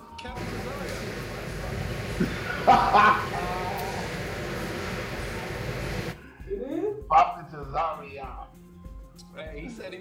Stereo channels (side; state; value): both; identical; correlation 1.00